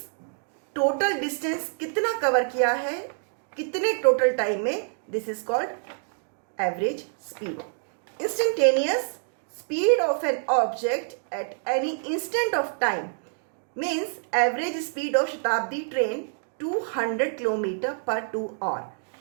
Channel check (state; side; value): silent; left; digital silence